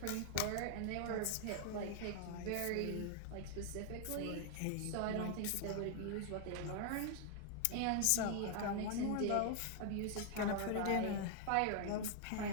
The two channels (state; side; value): different; both; correlation 0.00